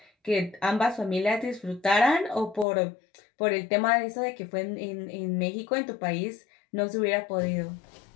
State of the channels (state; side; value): drops out; right; at 2.7 s